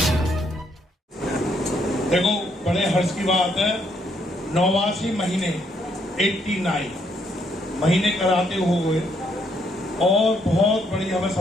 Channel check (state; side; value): normal; both; correlation 0.72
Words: देखो, बड़े हर्ष की बात है, 89 महीने 89 महीने कराते हुए और बहुत बड़ी हमें